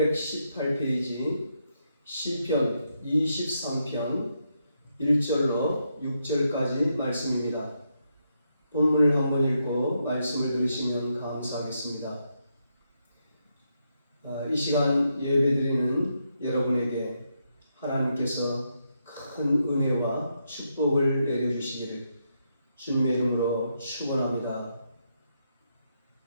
시편 23편 1절로 6절까지 말씀입니다. 본문을 한번 읽고 말씀을 들으시면 감사하겠습니다. 이 시간 예배드리는 여러분에게 하나님께서 큰 은혜와 축복을 내려주시기를 주님의 이름으로 축원합니다.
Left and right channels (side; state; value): both; inverted; correlation -0.81